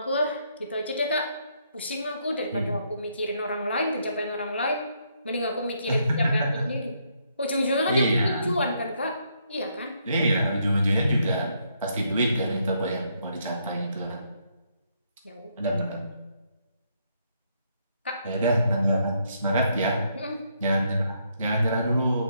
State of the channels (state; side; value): inverted; both; correlation -0.74